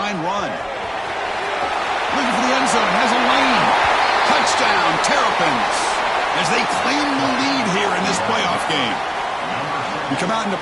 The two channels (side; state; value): both; identical; correlation 1.00